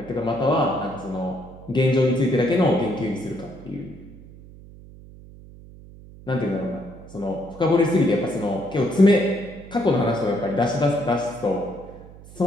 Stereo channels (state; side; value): noise; right; hum, 19 dB below the sound